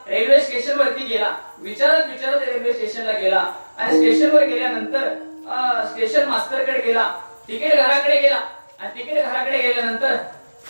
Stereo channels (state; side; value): inverted; both; correlation -1.00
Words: रेल्वे स्टेशन वरती गेला. विचारत विचारत रेल्वे स्टेशनला गेला आणि स्टेशनवर गेल्यानंतर स्टेशन मास्टरकडे गेला, तिकीट घराकडे गेला आणि तिकीट घराकडे गेल्यानंतर